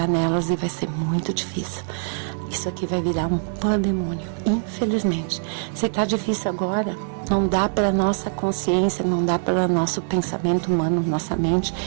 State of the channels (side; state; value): left; silent; digital silence